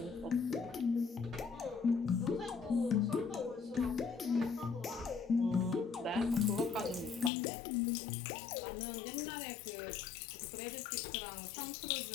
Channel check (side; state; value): right; drops out; at 7.3 s